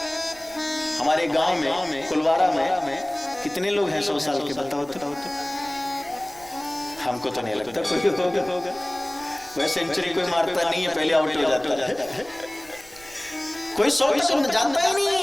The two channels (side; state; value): right; noise; rumble, 24 dB below the sound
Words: हमारे गांव में कुलवारा में कितने लोग हैं 100 साल के? बताओ तो। हमको तो नहीं लगता कोई होगा। वह सेंचुरी कोई मारता नहीं है, पहले आउट हो जाता है। कोई 100 तक जानता ही नहीं